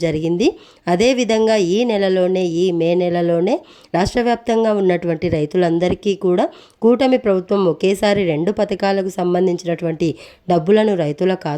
జరిగింది. అదేవిధంగా ఈ మే నెలలోనే రాష్ట్ర వ్యాప్తంగా ఉన్నటువంటి రైతులందరికీ కూడా కూటమి ప్రభుత్వం ఒకేసారి 2 పథకాలకు సంబంధించినటువంటి డబ్బులను రైతుల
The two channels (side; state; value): both; identical; correlation 1.00